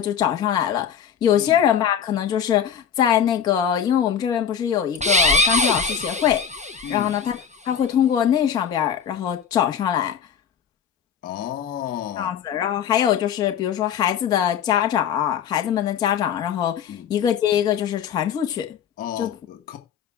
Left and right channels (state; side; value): quieter; right; 8.0 dB